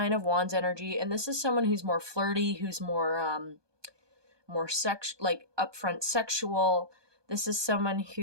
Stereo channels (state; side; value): late; left; 1.2 ms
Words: of Wands energy, and this is someone who's more flirty, who's more like upfront sexual. This is someone